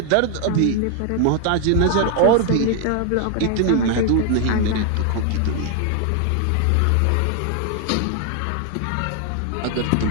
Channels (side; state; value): both; different; correlation 0.00